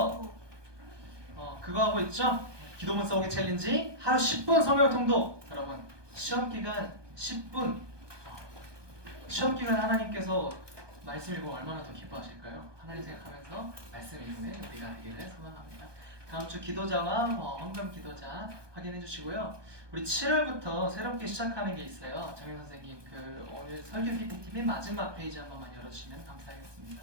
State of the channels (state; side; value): late; left; 1.2 ms